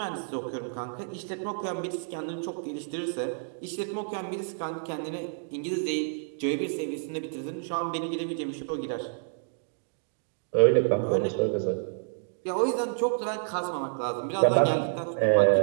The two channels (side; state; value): left; silent; digital silence